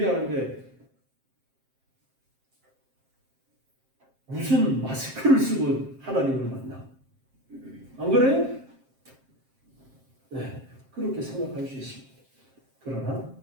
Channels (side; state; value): left; late; 7.6 ms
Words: 무슨 마스크를 쓰고 하나님을 만나? 안 그래요? 네, 그렇게 생각할 수 있습니다. 그러나